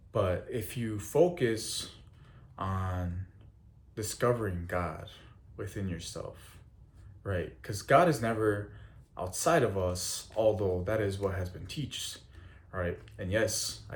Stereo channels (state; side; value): identical; both; correlation 1.00